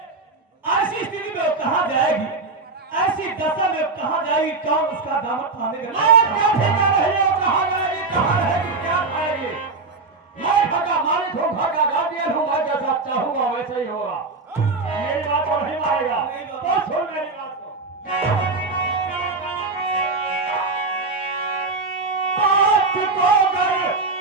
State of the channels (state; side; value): quieter; left; 3.8 dB